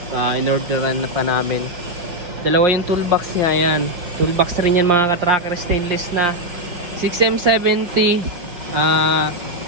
In-orderan na pa namin. Dalawa yung toolbox niya. Ayan, toolbox rin yan mga ka-tracker. Stainless na 6M70.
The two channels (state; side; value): late; left; 5.6 ms